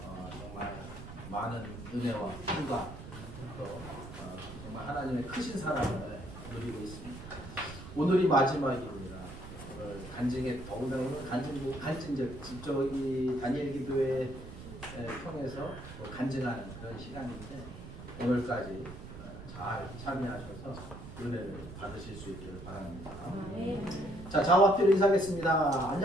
정말 많은 은혜와 힘과 또 정말 하나님의 크신 사랑을 누리고 있습니다. 오늘이 마지막입니다. 오늘 간증에 더구나 오늘 간증적 직접 이 다니엘 기도회 통해서 간증하는 그런 시간인데 오늘까지 잘 참여하셔서 은혜를 받으실 수 있기를 바랍니다. 자, 좌우앞뒤로 인사하겠습니다.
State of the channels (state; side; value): noise; right; rumble, 12 dB below the sound